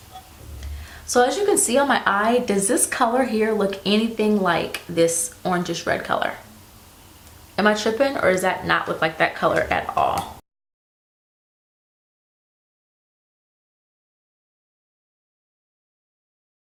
So as you can see on my eye, does this color here look anything like this orangish red color? Am I tripping, or does that not look like that color at all?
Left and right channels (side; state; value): both; identical; correlation 1.00